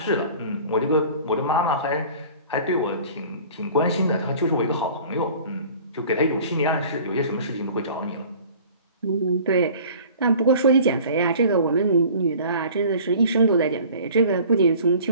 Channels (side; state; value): both; inverted; correlation -0.46